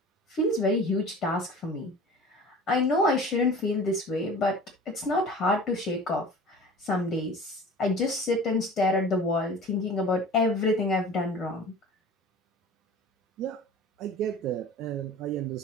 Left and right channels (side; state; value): both; normal; correlation 0.41